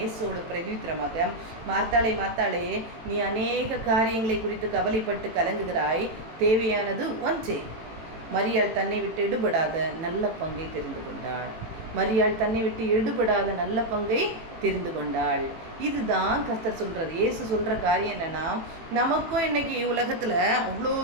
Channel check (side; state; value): left; late; 18 ms